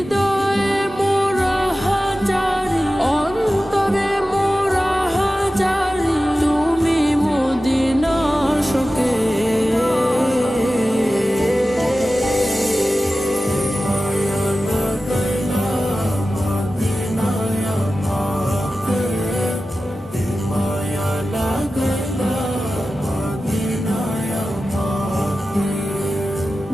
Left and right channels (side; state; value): both; normal; correlation 0.94